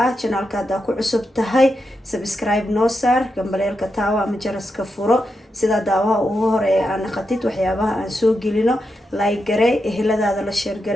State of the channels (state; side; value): normal; both; correlation 0.86